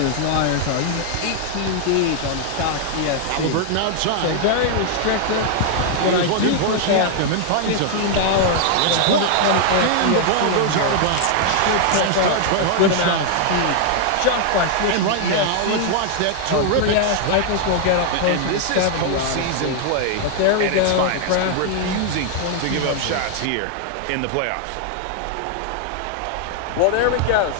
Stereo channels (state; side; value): different; both; correlation 0.00